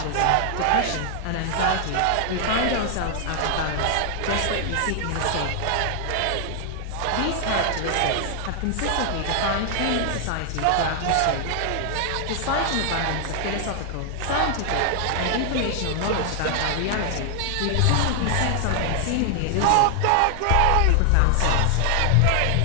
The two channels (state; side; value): different; both; correlation 0.00